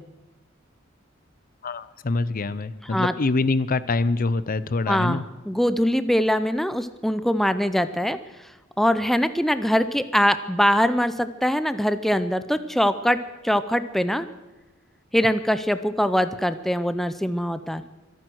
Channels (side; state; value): both; normal; correlation 0.89